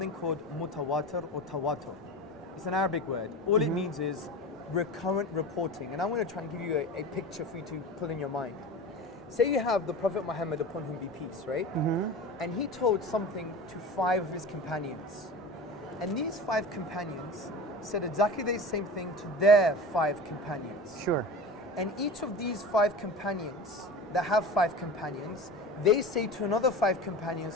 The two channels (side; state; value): both; normal; correlation 0.32